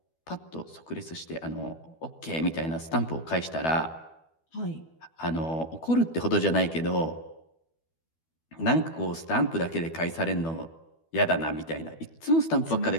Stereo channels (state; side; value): late; right; 12 ms